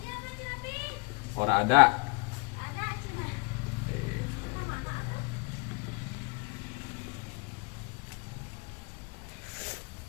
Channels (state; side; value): quieter; right; 33.0 dB